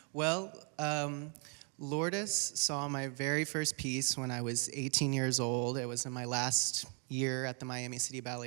Well, Lourdes saw my very first piece when I was 18 years old. It was in my last year at the Miami City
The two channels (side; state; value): left; quieter; 39.1 dB